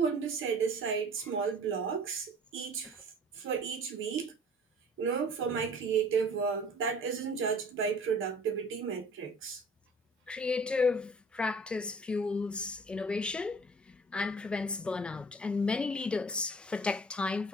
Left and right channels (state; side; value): normal; both; correlation 0.48